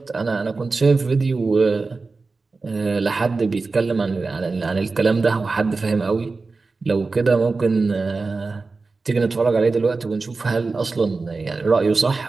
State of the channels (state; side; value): quieter; left; 3.9 dB